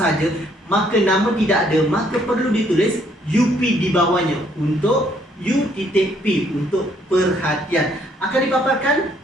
maka nama tidak ada, maka perlu ditulis UP di bawahnya untuk U.P untuk perhatian. Akan dipaparkan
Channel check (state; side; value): normal; both; correlation 0.67